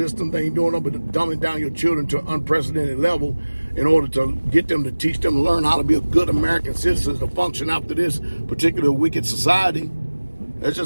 They ain't doing nothing but dumbing down your children to an unprecedented level in order to get them to teach them to learn how to be a good American citizen to function after this particular wicked society. That's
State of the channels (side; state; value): both; inverted; correlation -1.00